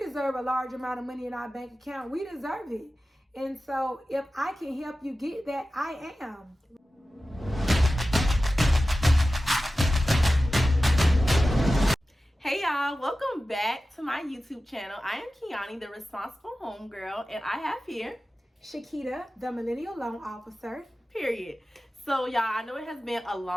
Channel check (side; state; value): both; normal; correlation 0.95